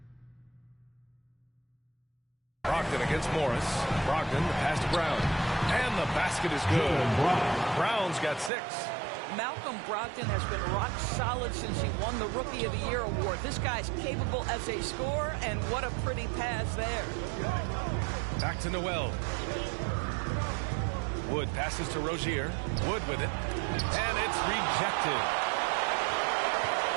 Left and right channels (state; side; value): drops out; left; at 8.5 s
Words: Brogdon against Morris. Brogdon, the pass to Brown. And the basket is good. Brown's got 6. Malcolm Brogdon has been rock solid since he won the Rookie of the Year award. This guy's capable as a scorer, and what a pretty pass there. Back to Noel. Wood passes to Rozier. Wood with it. And it's rejected.